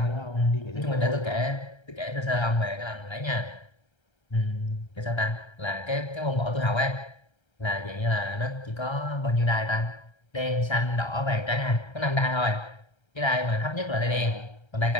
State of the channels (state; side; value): late; right; 1.3 ms